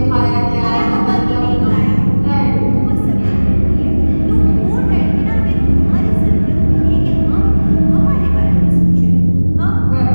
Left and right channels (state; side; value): inverted; both; correlation -1.00